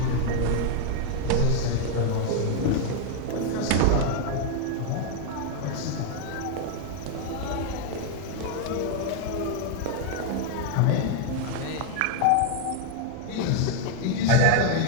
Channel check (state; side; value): different; both; correlation 0.00